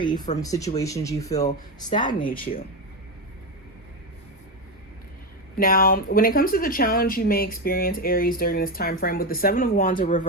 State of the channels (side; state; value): both; normal; correlation 0.12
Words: from situations you feel stagnate you. Now, when it comes to the challenge you may experience, Aries, during this time frame with the Seven of Wands in